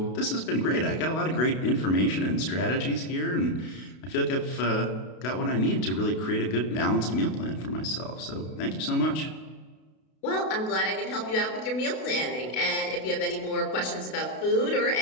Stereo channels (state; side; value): late; right; 32 ms